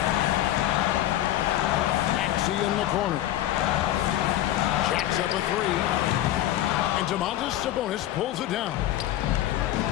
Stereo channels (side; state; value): right; quieter; 13.3 dB